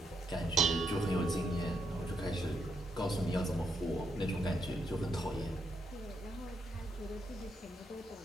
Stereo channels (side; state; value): both; normal; correlation 0.78